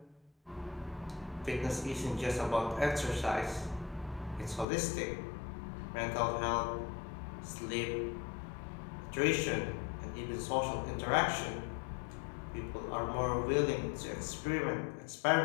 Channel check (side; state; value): right; drops out; at 4.7 s